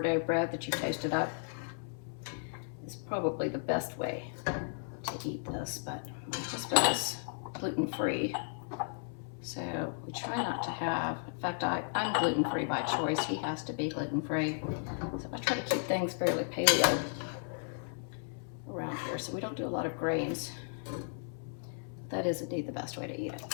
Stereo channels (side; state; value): right; silent; 55 dB below the other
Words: bread that you toasted up is probably the best way to eat this, but my husband is gluten-free, so we try not to have, in fact, I'm gluten-free by choice. He has to be gluten-free, so I try to keep things fairly paleo around here, so we don't do a lot of grains. That is indeed the best way to eat